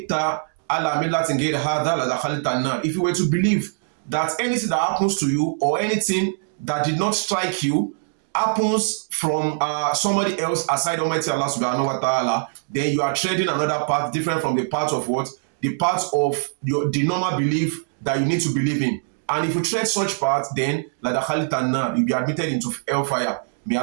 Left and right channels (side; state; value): left; silent; digital silence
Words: ala millatin ghayri hadha la dakhalta an-nar. If you were to believe that anything that happens to you or anything that did not strike you happens from somebody else aside Almighty Allah subhanahu wa ta'ala, then you are treading another path different from the path of what? The path of the normal belief that you need to believe in. And if you tread such path, then la dakhalta an-nar, you'll be admitted into hellfire. May